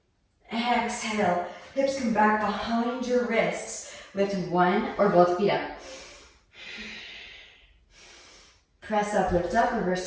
Exhale. Hips come back behind your wrists. Lift one or both feet up. Press up, lift up, reverse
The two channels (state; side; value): identical; both; correlation 1.00